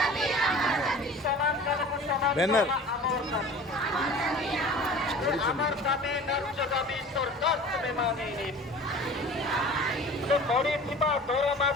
সমান কামকে সমান দরমা আমার দাবি। আমার দাবি ন্যায্য দাবি সরকার তুমি মানিনি। ବଢିଥିବା ଦରମା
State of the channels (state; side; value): normal; both; correlation 0.41